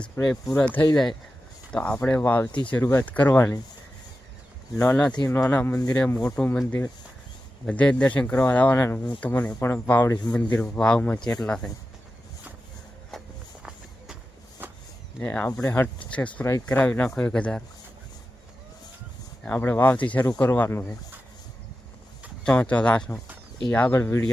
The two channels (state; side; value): normal; both; correlation 0.92